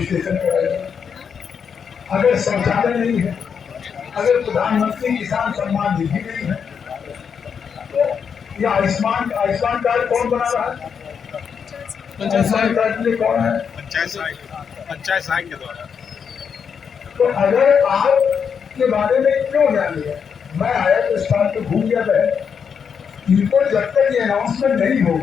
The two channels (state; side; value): quieter; right; 6.8 dB